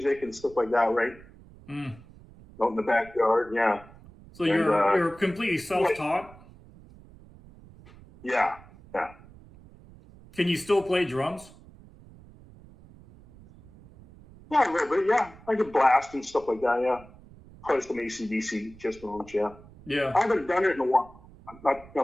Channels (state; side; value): noise; right; rumble, 22 dB below the sound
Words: and stuff like that, right? Mm. Out in the backyard, yeah. So you're completely self-taught? Yeah. Can you still play drums? Yeah, a little bit, yeah. I could blast and stuff like that, yeah. Play some AC/DC, Kiss songs, yeah. Yeah. I haven't done it in a while.